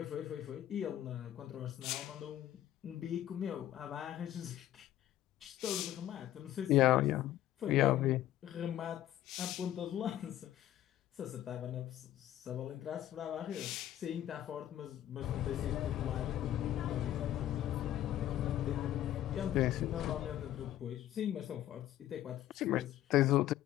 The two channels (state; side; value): quieter; right; 12.8 dB